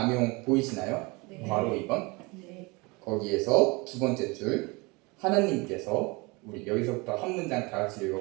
보이시나요? 괄호 2번. 거기에서 두 번째 줄, 하나님께서, 우리 여기서부터 한 문장 다 같이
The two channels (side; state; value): left; quieter; 26.4 dB